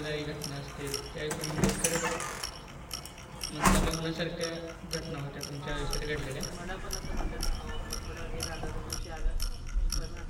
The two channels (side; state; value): both; identical; correlation 1.00